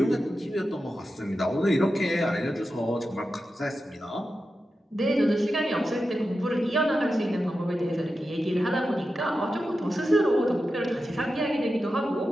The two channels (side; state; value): both; normal; correlation 0.91